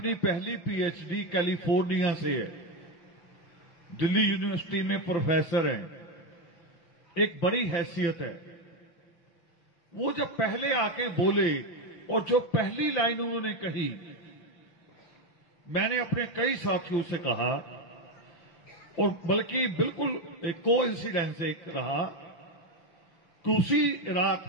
पहली पीएचडी कैलिफोर्निया से है, दिल्ली यूनिवर्सिटी में प्रोफेसर हैं, एक बड़ी हैसियत है, वो जब पहले आके बोले और जो पहली लाइन उन्होंने कही मैंने अपने कई साथियों से कहा, और बल्कि बिल्कुल एक कोइंसिडेंस एक रहा कि उसी रात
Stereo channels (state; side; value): late; right; 5.9 ms